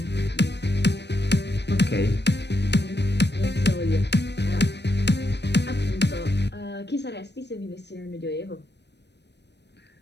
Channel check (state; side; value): late; right; 0.50 ms